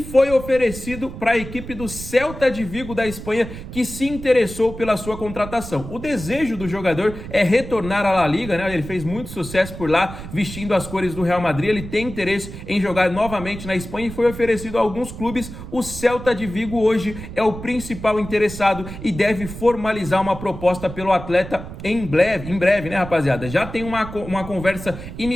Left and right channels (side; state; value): right; noise; rumble, 11 dB below the sound